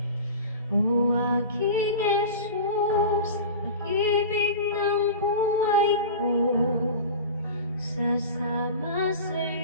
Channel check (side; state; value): both; inverted; correlation -0.33